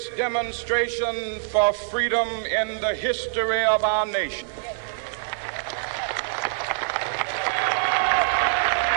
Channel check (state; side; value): silent; left; 62 dB below the other